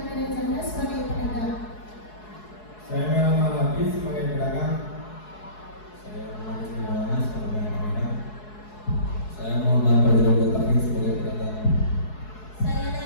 Medanjana sebagai pedagang. Saya Muhammad Hafiz sebagai pedagang. Saya Muhammad Maulana sebagai pedagang. Saya Muhammad Fadlul Taufik sebagai pedagang. Saya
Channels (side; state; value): right; late; 4.7 ms